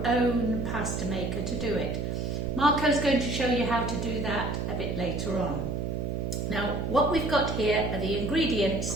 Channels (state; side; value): noise; right; hum, 2 dB below the sound